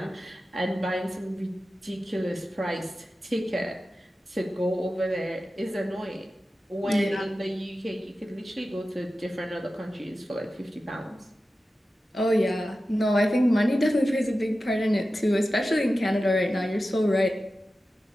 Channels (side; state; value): both; normal; correlation 0.93